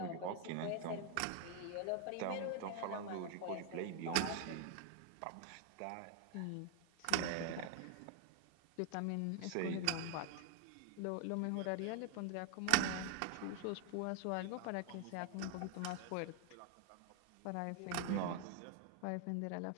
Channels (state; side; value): different; both; correlation 0.00